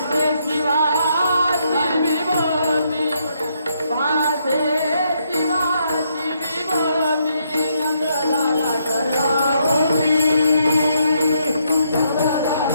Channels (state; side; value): inverted; both; correlation -0.75